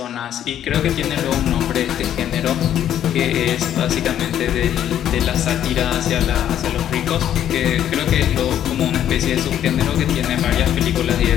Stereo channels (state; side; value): quieter; right; 10.7 dB